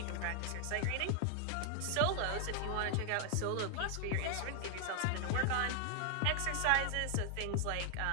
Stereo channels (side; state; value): both; different; correlation 0.00